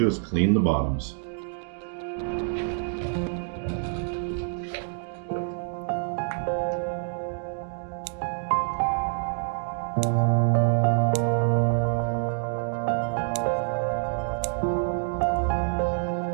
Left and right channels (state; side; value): silent; left; digital silence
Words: do is clean the bottoms.